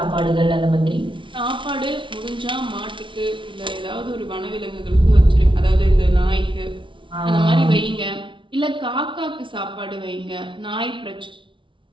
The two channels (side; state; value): left; late; 0.24 ms